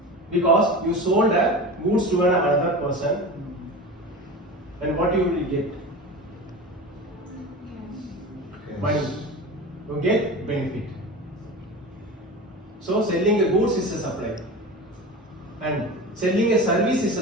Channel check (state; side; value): normal; both; correlation 0.30